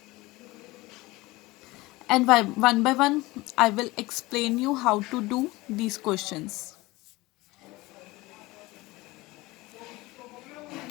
And one by one I will explain you how to do these questions.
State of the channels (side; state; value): right; quieter; 20.8 dB